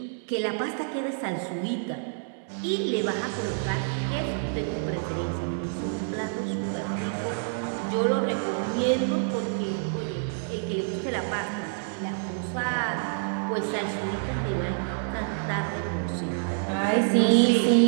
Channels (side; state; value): left; silent; digital silence